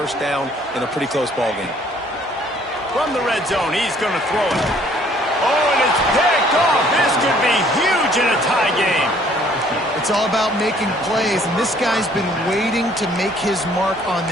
down in a pretty close ball game. From the red zone, he's going to throw it. Oh, and it's picked off. This could be huge in a tie game. It's all about making plays, and this guy's been waiting to make his mark on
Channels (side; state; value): both; normal; correlation 0.60